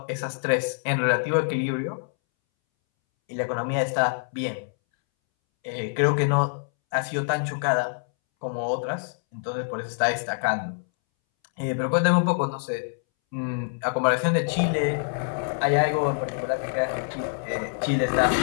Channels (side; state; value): right; silent; 61 dB below the other